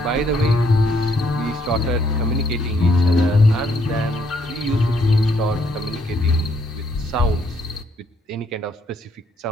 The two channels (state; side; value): normal; both; correlation 0.70